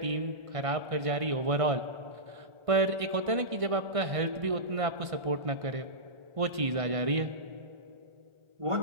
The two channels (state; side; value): late; left; 1.6 ms